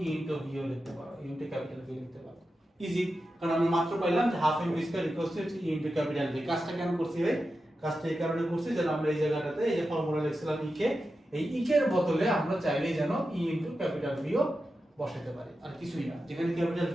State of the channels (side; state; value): both; normal; correlation 0.91